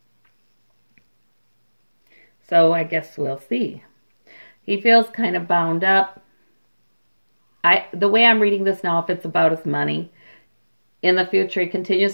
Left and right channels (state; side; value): inverted; both; correlation -1.00